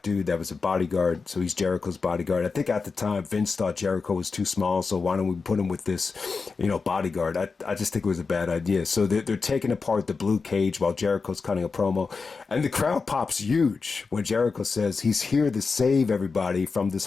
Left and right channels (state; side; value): quieter; right; 4.7 dB